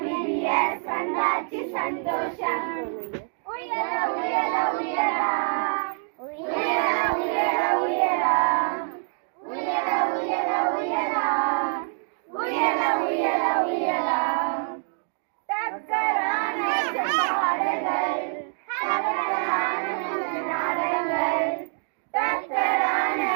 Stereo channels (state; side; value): silent; left; 61 dB below the other